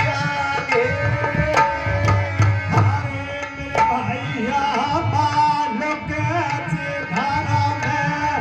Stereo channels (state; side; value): identical; both; correlation 1.00